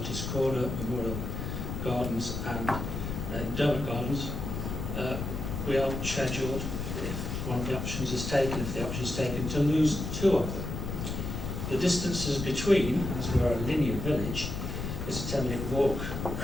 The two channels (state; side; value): noise; left; rumble, 4 dB below the sound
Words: Corner, Memorial Gardens and Derbyshire Gardens, we are scheduled, if one of the options is taken, to lose 2 of them. The distances between, as we are a linear village, is a 10-minute walk